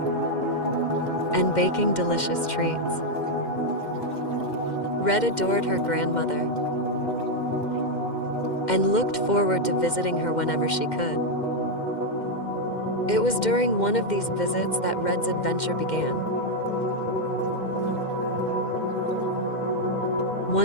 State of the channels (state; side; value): late; right; 2.1 ms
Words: and baking delicious treats. Red adored her grandmother and looked forward to visiting her whenever she could. It was during one of these visits that Red's adventure began.